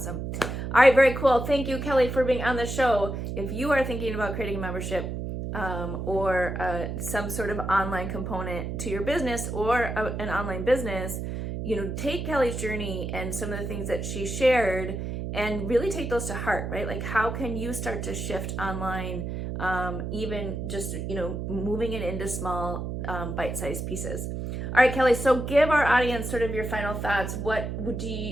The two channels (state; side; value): noise; right; hum, 4 dB below the sound